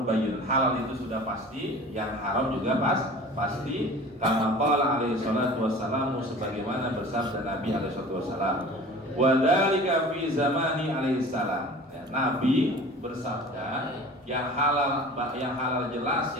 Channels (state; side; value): normal; both; correlation 0.41